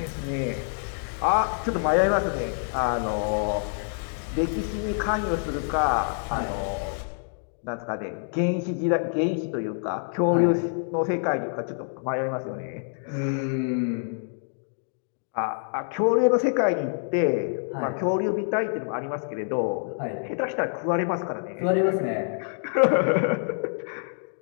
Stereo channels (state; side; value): silent; right; digital silence